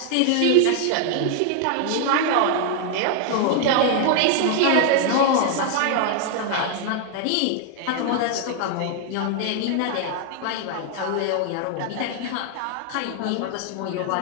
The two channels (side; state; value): both; different; correlation 0.00